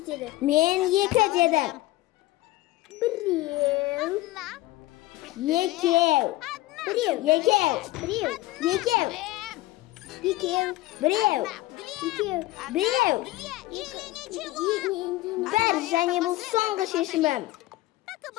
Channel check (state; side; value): quieter; right; 17.8 dB